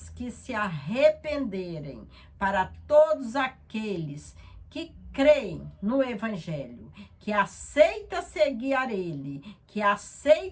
que se arrependerem, para todos aqueles que creem no Evangelho, que aceita seguir a ele, que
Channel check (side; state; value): both; identical; correlation 1.00